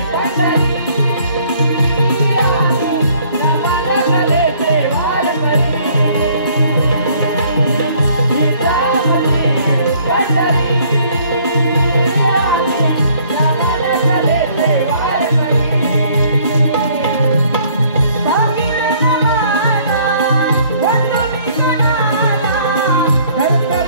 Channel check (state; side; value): inverted; both; correlation -0.61